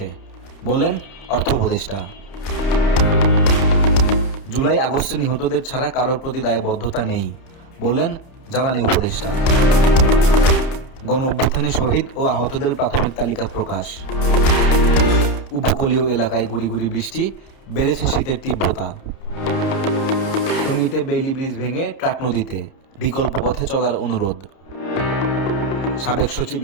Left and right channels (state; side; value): late; right; 30 ms